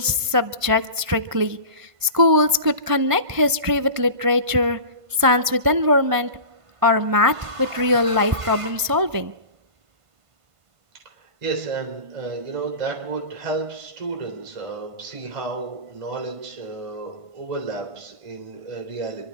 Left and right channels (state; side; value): late; left; 1.5 ms